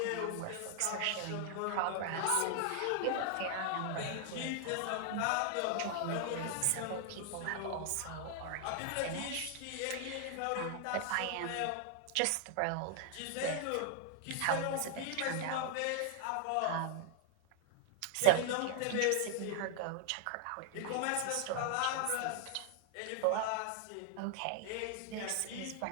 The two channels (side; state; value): both; different; correlation 0.00